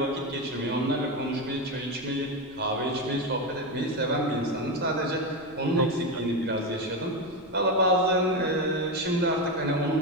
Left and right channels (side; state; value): left; noise; rumble, 26 dB below the sound